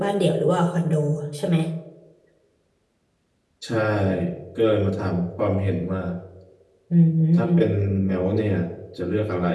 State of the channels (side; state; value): both; identical; correlation 1.00